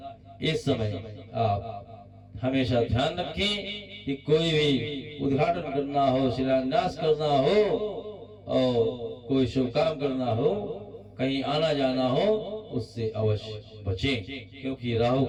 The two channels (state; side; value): identical; both; correlation 1.00